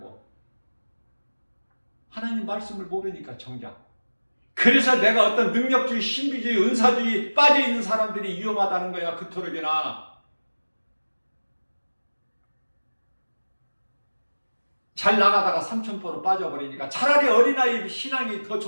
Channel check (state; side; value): inverted; both; correlation -1.00